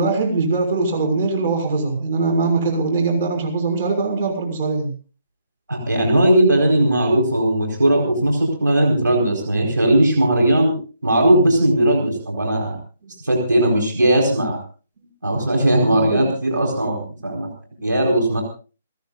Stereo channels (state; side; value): inverted; both; correlation -0.77